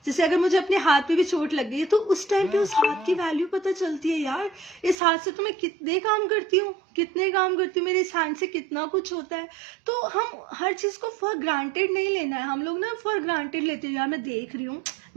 जैसे अगर मुझे अपने हाथ पे भी चोट लग गई है, तो उस टाइम पे उस हाथ की वैल्यू पता चलती है, यार इस हाथ से तो मैं कितने काम करती हूँ, मेरे इस हैंड से कितना कुछ होता है। तो हम हर चीज को फॉर ग्रांटेड नहीं लेना है। हम लोग ना फॉर ग्रांटेड लेते हैं, यार मैं देख रही हूँ,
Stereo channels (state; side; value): drops out; left; at 5.0 s